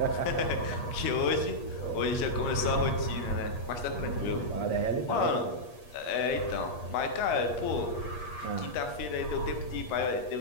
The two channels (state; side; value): late; right; 8.4 ms